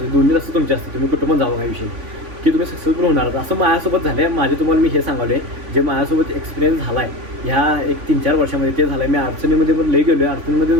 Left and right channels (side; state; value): left; late; 3.5 ms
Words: दोन्ही रस्ते तुमचे असतात. तुम्ही कुठं पण जावं काही विषय की तुम्ही सक्सेसफुल होणार. असं माझ्यासोबत झालं आहे. माझे तुम्हाला मी हे सांगवलं आहे जे माझ्यासोबत एक्सपिरियन्स झाला आहे ह्या एक 3-4 वर्षामध्ये ते झालं आहे. मी अडचणीमध्ये पण लई गेलो आहे. अडचणीमध्ये